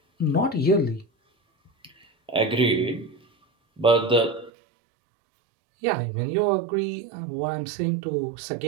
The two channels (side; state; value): left; drops out; at 4.5 s